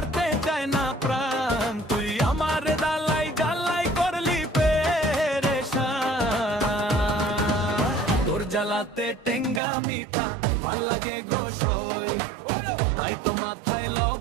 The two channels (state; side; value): drops out; left; at 9.6 s